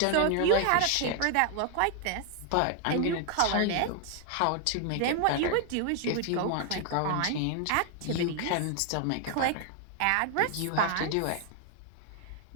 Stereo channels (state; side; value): different; both; correlation 0.00